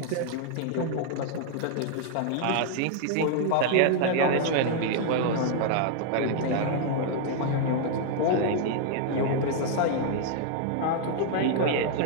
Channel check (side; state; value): both; different; correlation 0.00